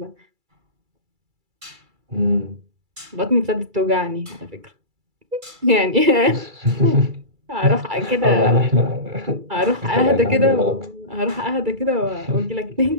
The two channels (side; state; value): left; late; 2.3 ms